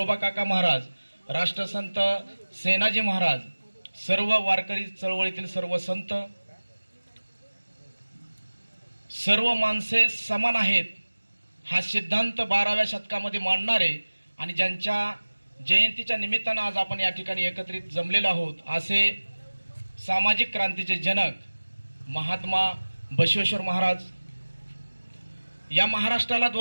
काका महाराज, राष्ट्रसंत सेनाजी महाराज, सर्व वारकरी चळवळीतील सर्व संत, सर्व माणसे समान आहेत हा सिद्धांत 12व्या शतकामध्ये मांडणारे आणि ज्यांच्या जयंतीच्या निमित्तानं आज आपण या ठिकाणी एकत्रित जमलेलो आहोत असे सामाजिक क्रांतीचे जनक महात्मा बसवेश्वर महाराज, या महाराष्ट्राला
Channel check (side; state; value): both; inverted; correlation -1.00